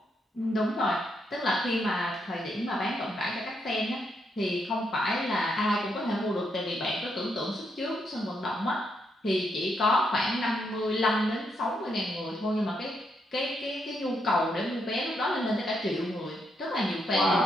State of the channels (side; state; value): both; normal; correlation 0.78